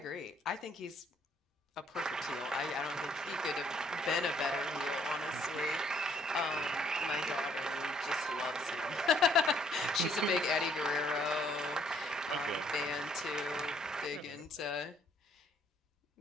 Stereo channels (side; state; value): both; normal; correlation 0.66